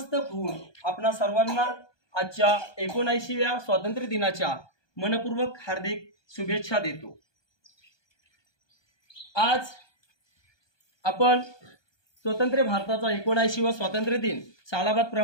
होऊन आपणा सर्वांना आजच्या 79व्या स्वातंत्र्य दिनाच्या मनपूर्वक हार्दिक शुभेच्छा देतो। आज आपण स्वतंत्र भारताचा 79वा स्वातंत्र्य दिन सालाबाद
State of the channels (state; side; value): late; right; 1.2 ms